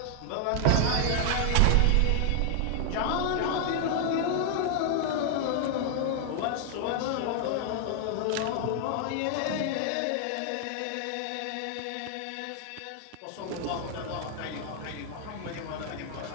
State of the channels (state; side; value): different; both; correlation 0.00